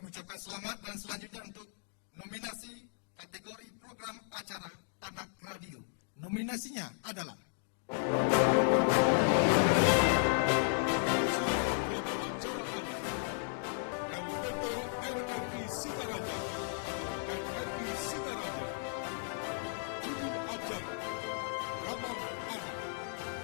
ucapkan selamat dan selanjutnya untuk nominasi kategori program acara anak radio. Nominasinya adalah Nominasi program acara anak LPP RRI Singaraja atau RRI Singaraja. Judul acara Ramah Anak.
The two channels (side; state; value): right; silent; digital silence